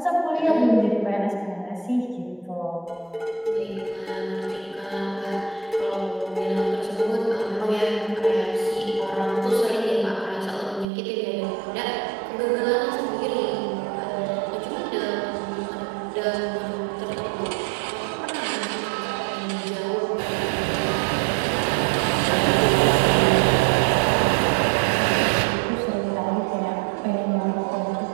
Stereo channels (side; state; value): left; drops out; at 10.9 s